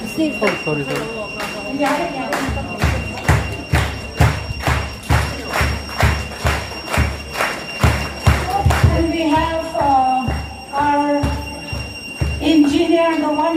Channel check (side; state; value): both; identical; correlation 1.00